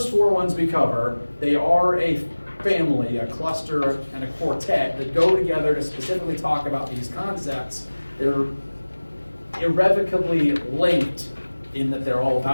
4 ones we cover. They are a family, a cluster, and a quartet that go together to specifically talk about these concepts. They're irrevocably linked in that they're all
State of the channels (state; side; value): inverted; both; correlation -1.00